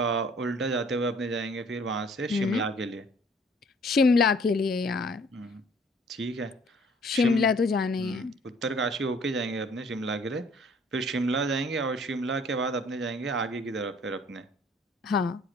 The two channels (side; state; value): both; normal; correlation 0.57